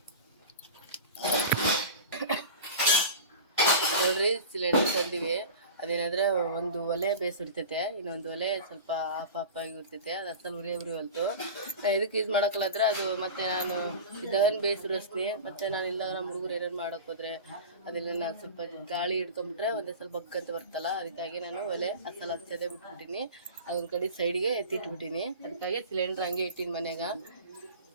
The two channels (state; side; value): inverted; both; correlation -0.34